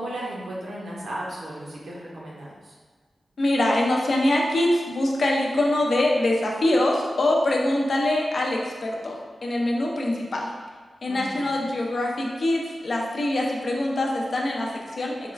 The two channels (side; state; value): both; normal; correlation 0.93